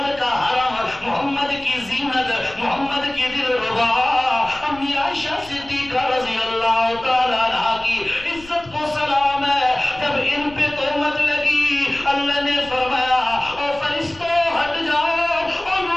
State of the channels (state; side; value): noise; left; rumble, 21 dB below the sound